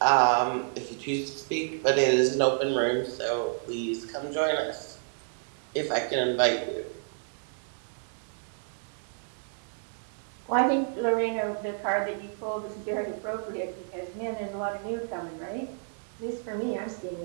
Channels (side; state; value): left; silent; digital silence